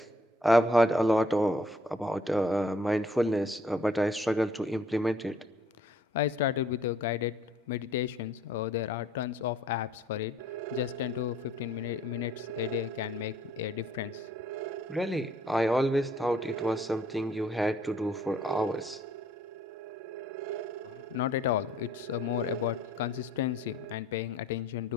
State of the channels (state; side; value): normal; both; correlation 0.60